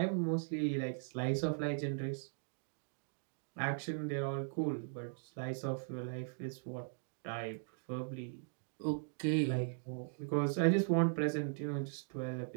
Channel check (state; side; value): silent; left; digital silence